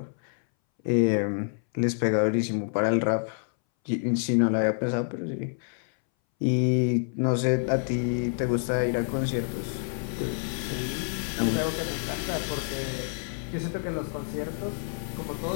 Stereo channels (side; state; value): right; silent; 60 dB below the other